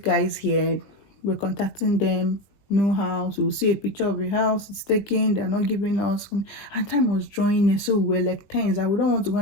guys here. We're contacting them. no house. We'll see a picture of a house, it's taken, they're not giving us. And time was drawing in, so we're like tense that we don't want to go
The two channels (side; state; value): right; late; 19 ms